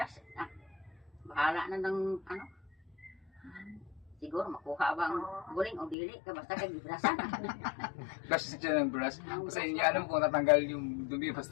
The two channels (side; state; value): right; drops out; at 6.0 s